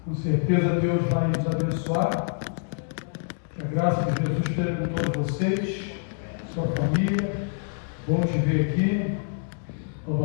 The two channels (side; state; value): right; silent; digital silence